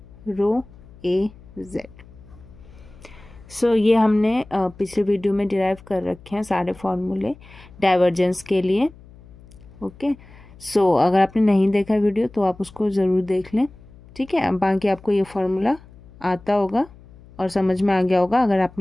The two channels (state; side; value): noise; left; hum, 22 dB below the sound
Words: rho a z. So ये हमने पिछले वीडियो में डिराइव कर रखे हैं सारे फॉर्मूले डाइवर्जेंस के लिए। ओके, सो अगर आपने नहीं देखा वीडियो तो आप उसको ज़रूर देख लें। ठीक है, बाकी आपको ये फॉर्मूला आता होगा और समझ में आ गया होगा अगर